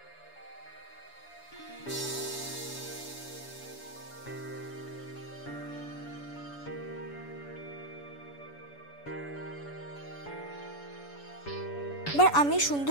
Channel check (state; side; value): late; right; 7.0 ms